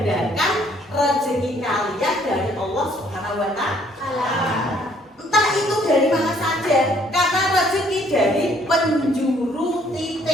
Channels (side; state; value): both; normal; correlation 0.63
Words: rezeki kalian dari Allah Subhanahu wa Ta'ala. Entah itu dari mana saja, karena rezeki dari penjuru